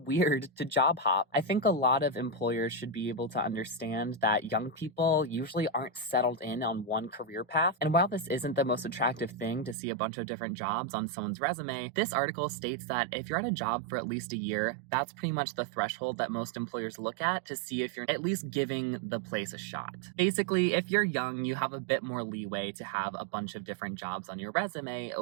weird to job hop. I think a lot of employers should be able to understand that young people usually aren't settled in on one career path. And while this isn't the most attractive thing to see a bunch of different jobs on someone's resume, this article states that if you're at a job for at least a year, that's pretty much the threshold that most employers look at to see if you're at least giving the place a shot. Basically, if you're young, you have a bit more leeway to have a bunch of different jobs on your resume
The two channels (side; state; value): left; drops out; at 9.8 s